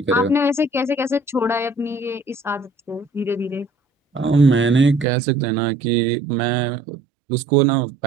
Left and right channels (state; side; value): drops out; left; at 5.1 s